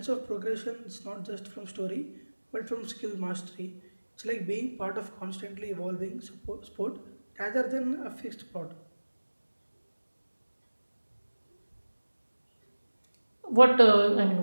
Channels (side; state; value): both; inverted; correlation -1.00